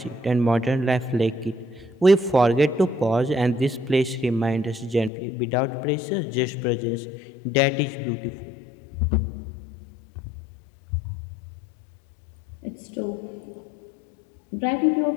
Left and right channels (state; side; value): drops out; right; at 5.1 s